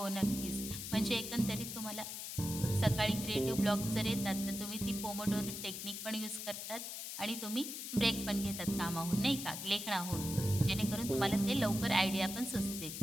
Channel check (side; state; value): left; noise; hiss, 7 dB below the sound